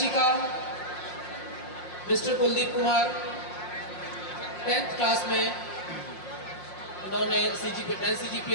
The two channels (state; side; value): late; right; 5.6 ms